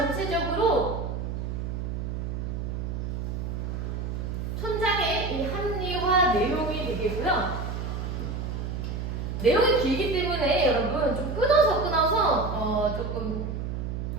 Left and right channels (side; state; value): right; noise; hum, 4 dB below the sound